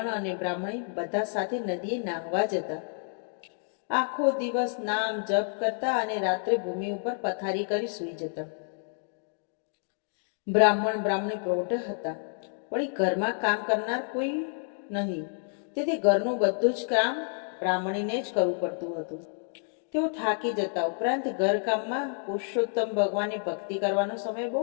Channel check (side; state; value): right; silent; 58 dB below the other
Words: અને બ્રાહ્મણી બધા સાથે નદીએ નાહવા જતા. આખો દિવસ નામ જપ કરતા અને રાત્રે ભૂમિ ઉપર પથારી કરી સૂઈ જતા. બ્રાહ્મણ બ્રાહ્મણી પ્રૌઢ હતા, પણ ઘરમાં કામ કરનાર કોઈ નહીં, તેથી ઘરનું બધું જ કામ બ્રાહ્મણીને જ કરવું પડતું હતું. તેઓ થાકી જતા, ઉપરાંત ઘરકામમાં પુરુષોત્તમ ભગવાનની ભક્તિ કરવાનો સમય બહુ